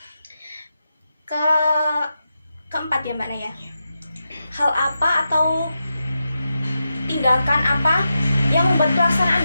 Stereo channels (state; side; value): inverted; both; correlation -0.89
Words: Keempat ya Mbak Naya. Hal apa atau tindakan apa yang membuat pelaksanaan